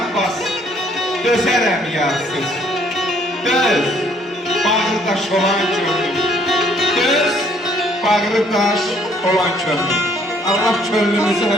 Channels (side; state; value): both; normal; correlation 0.63